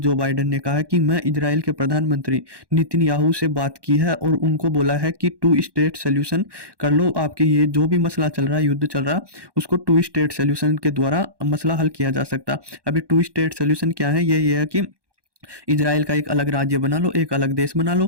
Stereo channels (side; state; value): left; late; 1.1 ms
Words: बाइडेन ने कहा है कि मैं इजराइल के प्रधानमंत्री नेतन्याहू से बात की है और उनको बोला है कि टू स्टेट सोल्यूशन कर लो। आपके ये जो भी मसला चल रहा है, युद्ध चल रहा है, उसको टू स्टेट सोल्यूशन के द्वारा मसला हल किया जा सकता। अभी टू स्टेट सोल्यूशन क्या है? ये है कि इजराइल का एक अलग राज्य बना लो, एक अलग देश बना